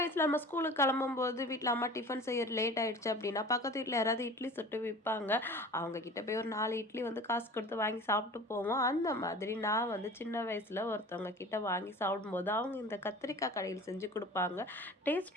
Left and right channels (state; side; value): normal; both; correlation 0.40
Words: வயசுல நம்ம ஸ்கூலுக்கு கிளம்பும்போது வீட்ல அம்மா டிஃபன் செய்ய லேட் ஆயிடுச்சு அப்படின்னா, பக்கத்து வீட்ல யாராவது இட்லி சுட்டு விப்பாங்க. அவங்க கிட்ட போய் ஒரு 4 இட்லி வந்து காசு கொடுத்து வாங்கி சாப்பிட்டு போவோம். அந்த மாதிரி நான் வந்து சின்ன வயசுல ஒருத்தவங்க கிட்ட வாங்கி சாப்பிடும்போது, அவங்க இந்த கத்திரிக்காய் கடையில் செஞ்சு குடுப்பாங்க.